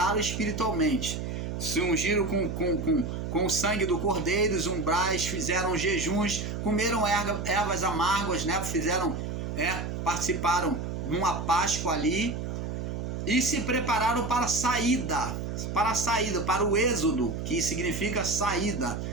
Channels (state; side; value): noise; right; hum, 4 dB below the sound